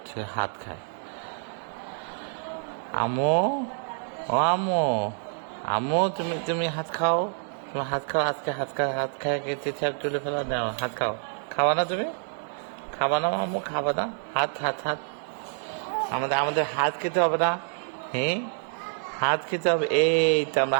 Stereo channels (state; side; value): silent; left; 60 dB below the other